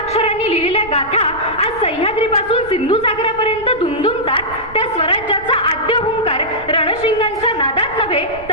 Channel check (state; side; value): noise; right; rumble, 18 dB below the sound